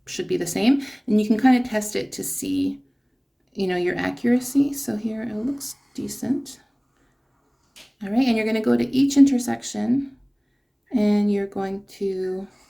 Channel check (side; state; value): both; identical; correlation 1.00